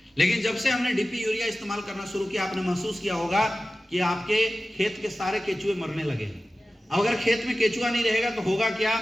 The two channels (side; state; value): both; normal; correlation 0.96